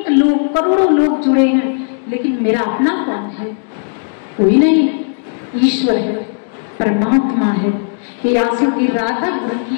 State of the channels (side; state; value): right; silent; digital silence